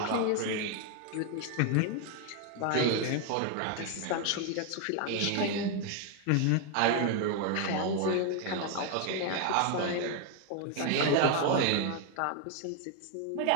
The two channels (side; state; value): both; different; correlation 0.01